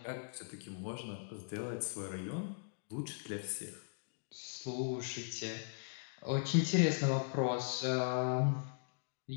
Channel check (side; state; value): right; silent; digital silence